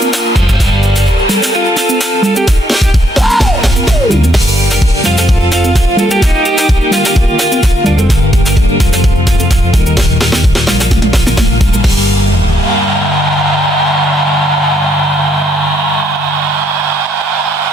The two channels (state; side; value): normal; both; correlation 0.73